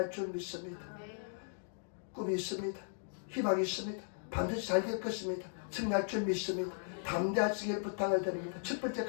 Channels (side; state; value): right; silent; digital silence